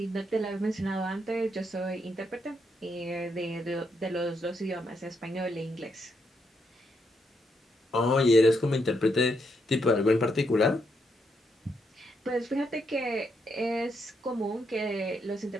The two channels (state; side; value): normal; both; correlation 0.78